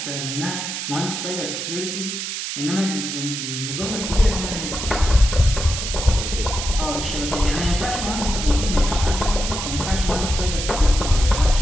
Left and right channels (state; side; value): noise; right; hiss, 4 dB below the sound